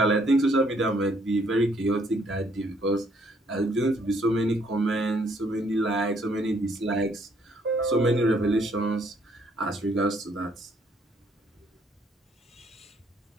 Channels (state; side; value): normal; both; correlation 0.67